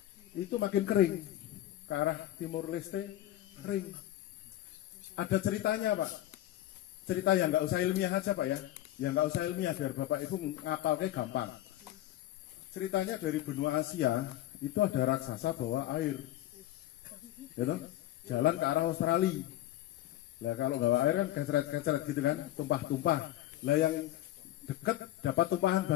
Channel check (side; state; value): right; quieter; 14.1 dB